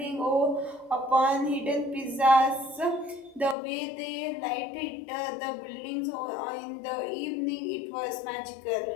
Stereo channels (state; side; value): drops out; right; at 3.6 s